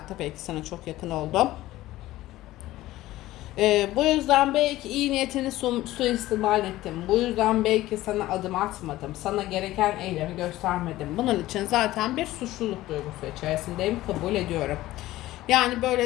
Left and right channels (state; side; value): quieter; right; 16.2 dB